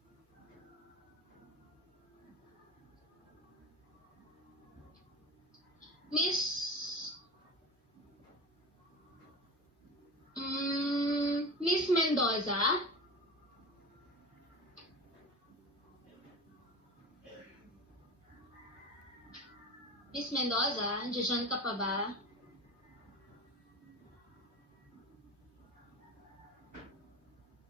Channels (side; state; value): both; normal; correlation 0.30